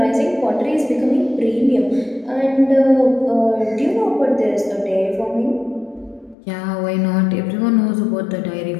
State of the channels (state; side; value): drops out; right; at 6.4 s